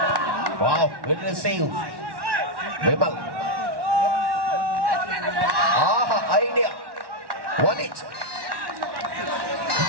Wow, good receive. Vimal. Idea. Won it.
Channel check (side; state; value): left; late; 1.1 ms